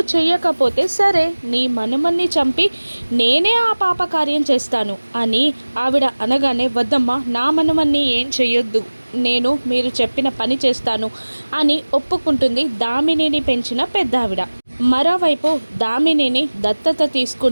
చెయ్యకపోతే సరే నీ మనుమన్ని చంపి నేనే ఆ పాప కార్యం చేస్తాను అని ఆవిడ అనగానే వద్దమ్మా నా మనుమన్ని ఏం చెయ్యొద్దు నేను మీరు చెప్పిన పని చేస్తాను అని ఒప్పుకుంటుంది దామినిని పెంచిన పెద్దావిడ. మరోవైపు దామినిని దత్తత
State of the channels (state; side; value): inverted; both; correlation -1.00